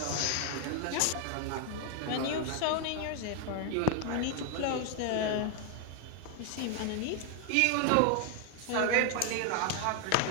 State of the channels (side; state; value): both; different; correlation 0.00